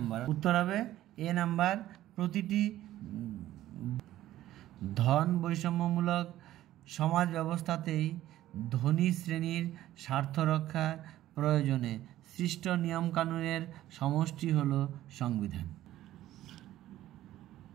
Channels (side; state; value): left; quieter; 14.0 dB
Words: উত্তর হবে এ নাম্বার, প্রতিটি ধন বৈষম্যমূলক সমাজ ব্যবস্থাতেই ধনী শ্রেণীর স্বার্থ রক্ষার প্রয়োজনে সৃষ্ট নিয়মকানুনের সমষ্টি হল সংবিধান।